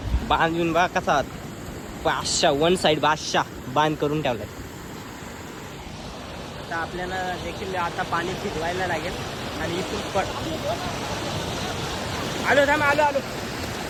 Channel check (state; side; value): identical; both; correlation 1.00